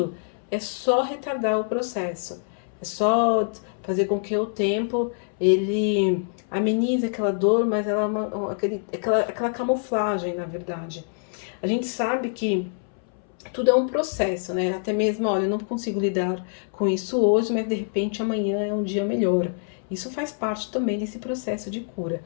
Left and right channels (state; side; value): silent; right; 62 dB below the other